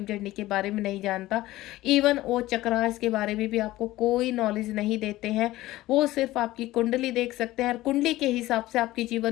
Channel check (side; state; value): right; quieter; 16.8 dB